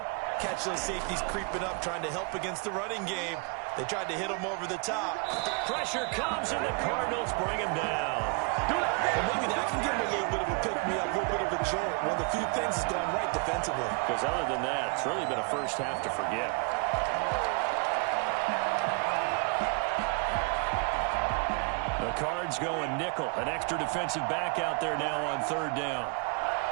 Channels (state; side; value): quieter; left; 32.8 dB